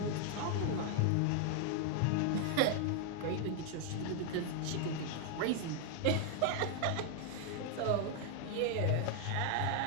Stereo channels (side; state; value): both; different; correlation 0.00